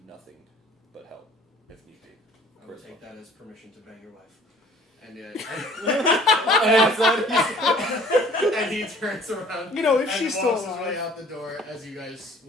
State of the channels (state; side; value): normal; both; correlation 0.53